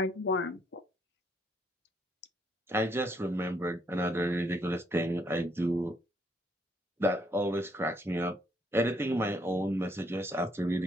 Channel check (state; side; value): normal; both; correlation 0.71